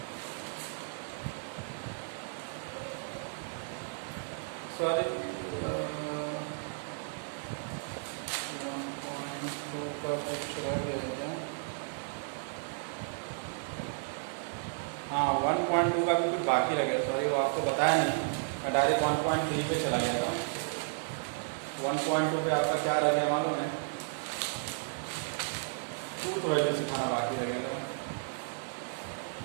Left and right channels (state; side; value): silent; left; 55 dB below the other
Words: सॉरी 1.2 का कुछ रह गया क्या? हाँ 1.2 का भी कुछ बाकी रह गया, सॉरी वो आपको बताया नहीं, मैं डायरेक्ट 1.3 पे चला गया था। 1.2 पे आपका क्या रह गया मालूम है, ट्रूथ वैल्यू सिखाना बाकी रह गया था।